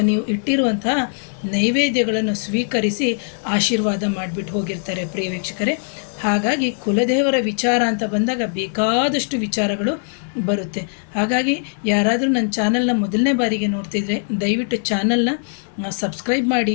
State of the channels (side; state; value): right; silent; digital silence